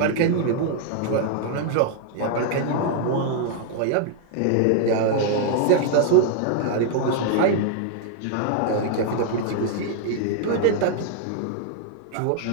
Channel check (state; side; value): different; both; correlation 0.00